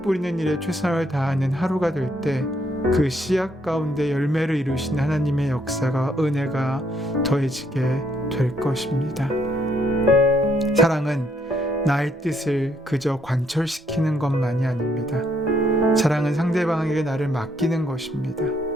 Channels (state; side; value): normal; both; correlation 0.72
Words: 뿌리는 일에 최선을 다하는 하루가 될 때 그 씨앗 가운데 열매를 이루신 하나님의 역사가, 은혜가 더해지게 될 것입니다. 사랑은 나의 뜻을 그저 관철시키는 것만이 아닙니다. 사랑은 상대방에게 나를 맡기는 것입니다.